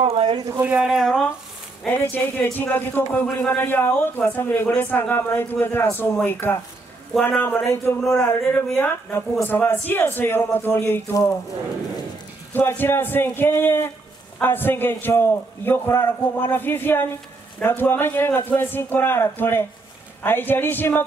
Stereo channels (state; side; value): quieter; left; 3.3 dB